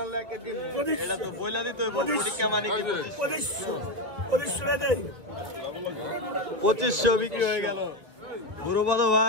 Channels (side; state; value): left; late; 1.6 ms